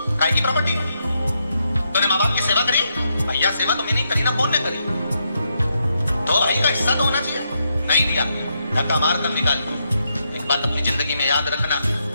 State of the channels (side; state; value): both; inverted; correlation -0.80